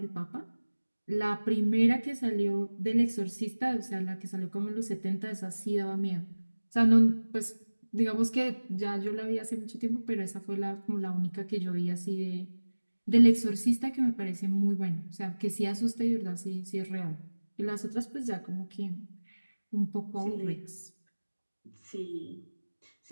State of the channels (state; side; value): inverted; both; correlation -1.00